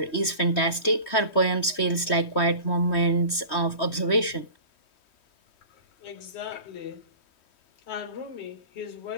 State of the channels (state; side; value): late; right; 3.1 ms